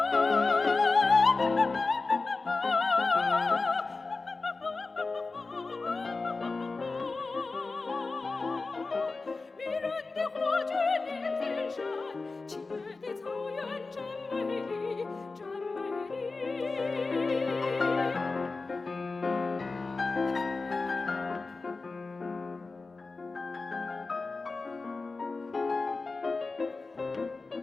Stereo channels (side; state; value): right; quieter; 3.8 dB